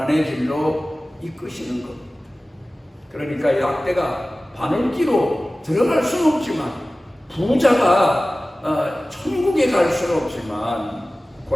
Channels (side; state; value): both; normal; correlation 0.97